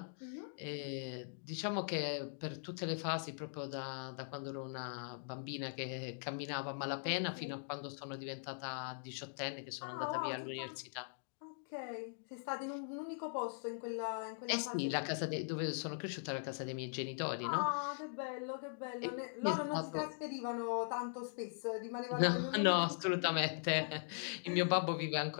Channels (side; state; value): right; silent; digital silence